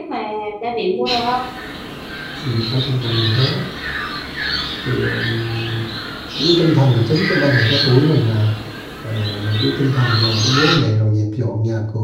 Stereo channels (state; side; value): identical; both; correlation 1.00